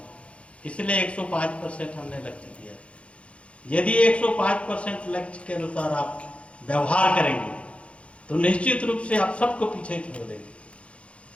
इसलिए 105% हमने लक्ष्य दिया। यदि 105% लक्ष्य के अनुसार आप व्यवहार करेंगे तो निश्चित रूप से आप सबको पीछे छोड़ देंगे।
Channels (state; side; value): late; right; 0.061 ms